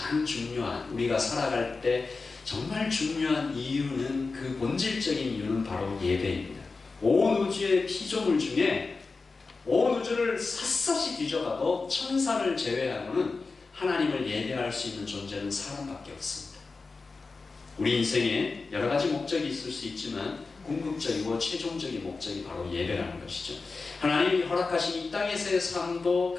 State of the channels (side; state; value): right; quieter; 4.1 dB